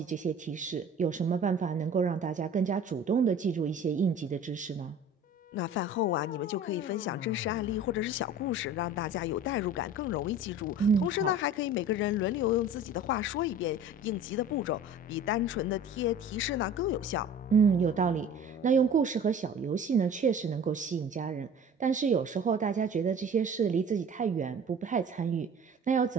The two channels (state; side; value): normal; both; correlation 0.43